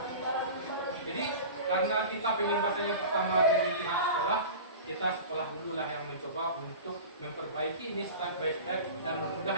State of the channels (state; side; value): inverted; both; correlation -0.34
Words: Jadi karena kita pengimbasnya pertama dari pihak sekolah, kita sekolah dulu lah yang mencoba untuk memperbaiki ini step by step dan